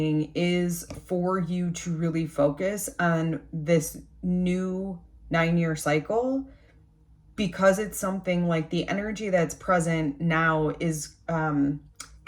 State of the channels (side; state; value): both; identical; correlation 1.00